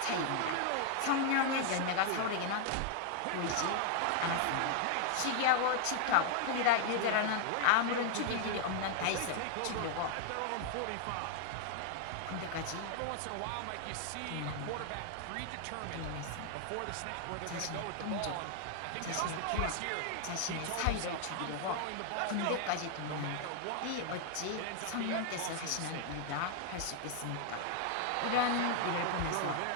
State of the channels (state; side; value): different; both; correlation 0.00